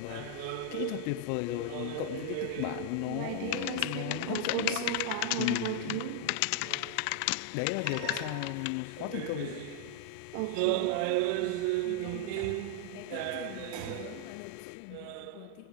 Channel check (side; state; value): both; different; correlation 0.00